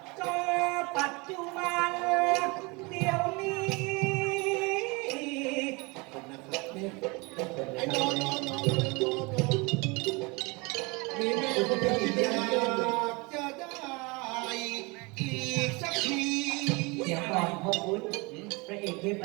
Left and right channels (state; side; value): quieter; left; 27.1 dB